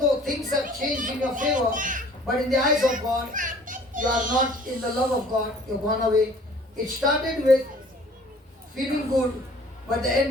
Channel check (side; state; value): both; normal; correlation 0.52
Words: things have changed in your favor, but in the eyes of God, you are not in the love of God, you've gone away. It started with feeling good, but the